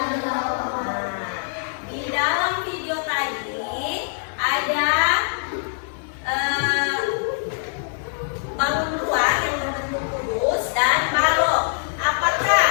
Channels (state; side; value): silent; right; digital silence